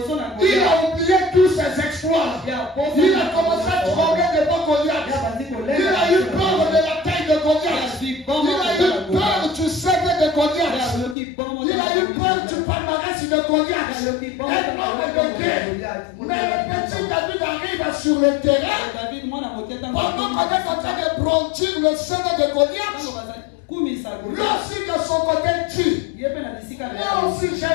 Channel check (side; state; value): right; drops out; at 11.2 s